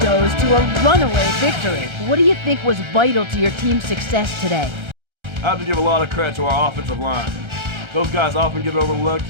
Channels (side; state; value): left; late; 1.3 ms